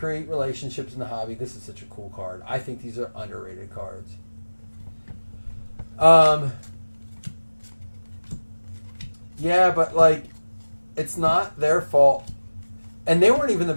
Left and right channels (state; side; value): inverted; both; correlation -1.00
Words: relationships in the hobby. This is such a cool card. I think these are underrated cards. Yeah, but like, It's not their fault. And they weren't even the